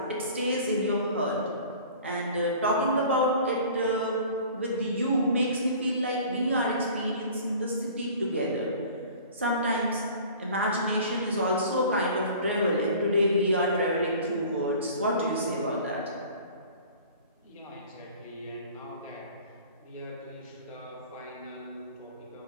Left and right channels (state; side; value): inverted; both; correlation -0.45